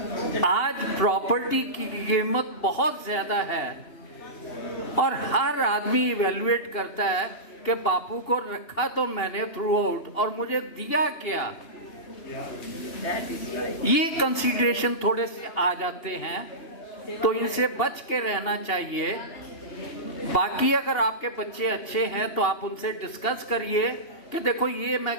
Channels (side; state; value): right; late; 2.8 ms